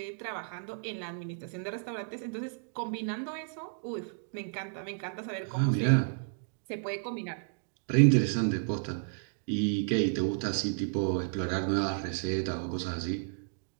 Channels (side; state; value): left; silent; digital silence